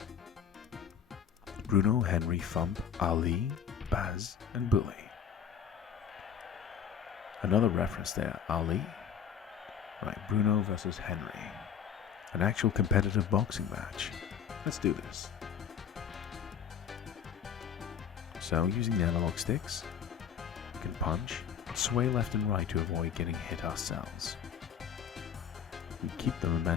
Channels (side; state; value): right; quieter; 7.9 dB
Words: Bruno, Henry, Fump, Ali, Baz, and Bully. Another reference there, Ali. Right, Bruno versus Henry. An actual competitive boxing match. Let's do this. So, using the analog sticks, we can punch, sway left and right to avoid getting hit ourselves. If you keep the